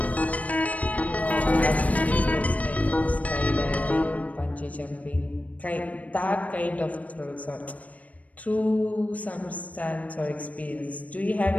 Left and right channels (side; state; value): right; late; 0.069 ms